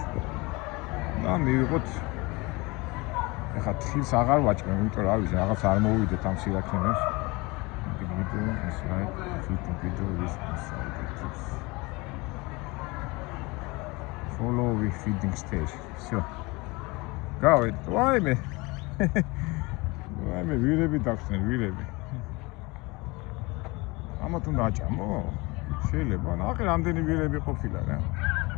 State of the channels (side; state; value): right; quieter; 24.7 dB